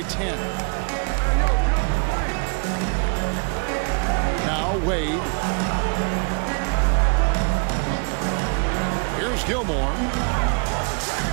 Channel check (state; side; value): quieter; left; 37.3 dB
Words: 10. Now Wade. Here's Gilmore.